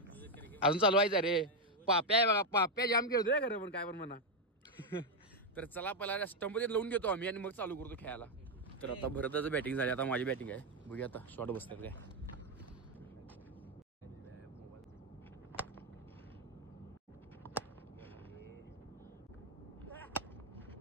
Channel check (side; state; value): both; normal; correlation 0.04